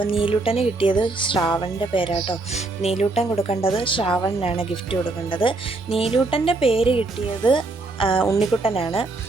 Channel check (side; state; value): left; quieter; 3.3 dB